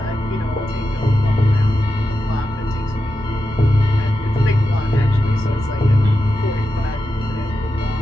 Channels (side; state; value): both; normal; correlation 0.89